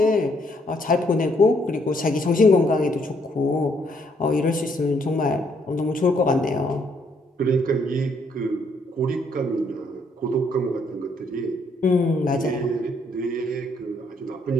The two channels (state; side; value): normal; both; correlation 0.70